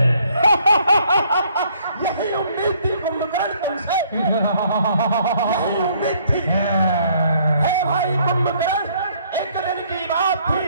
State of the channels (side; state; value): both; inverted; correlation -0.64